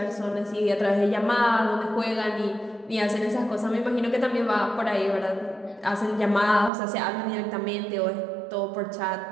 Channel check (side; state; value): left; drops out; at 6.7 s